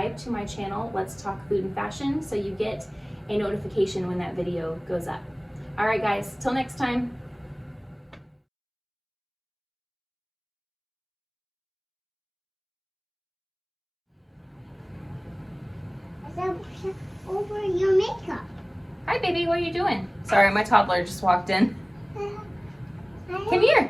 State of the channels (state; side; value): identical; both; correlation 1.00